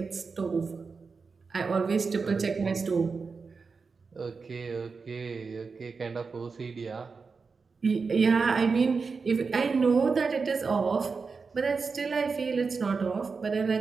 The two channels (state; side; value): quieter; left; 4.8 dB